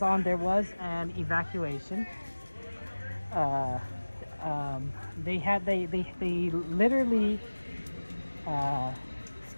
on, there was an evacuation. They literally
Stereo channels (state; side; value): inverted; both; correlation -1.00